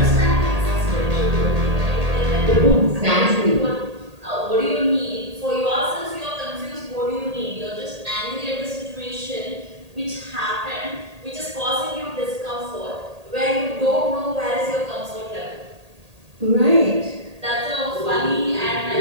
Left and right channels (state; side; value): late; left; 1.8 ms